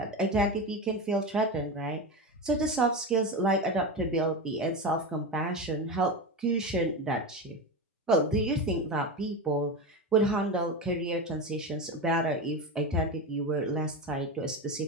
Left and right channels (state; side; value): normal; both; correlation 0.20